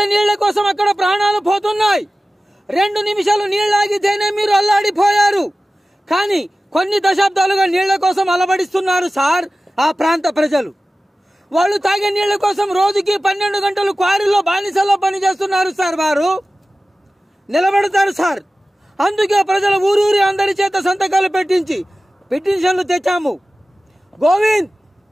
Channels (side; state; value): both; normal; correlation 0.96